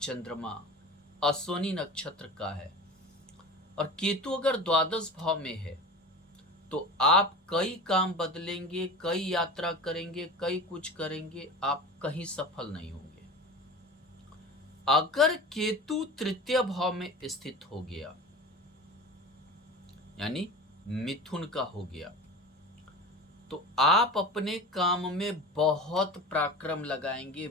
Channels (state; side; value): normal; both; correlation 0.34